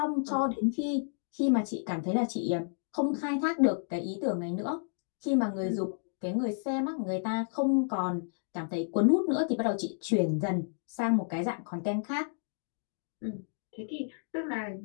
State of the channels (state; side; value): silent; right; digital silence